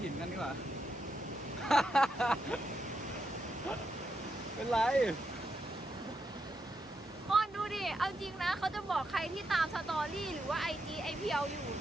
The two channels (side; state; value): both; normal; correlation 0.83